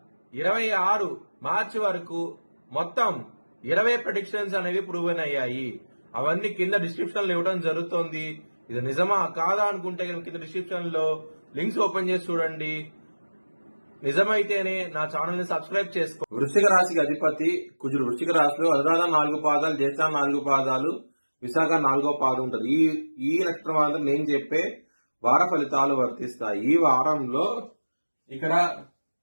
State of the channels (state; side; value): inverted; both; correlation -1.00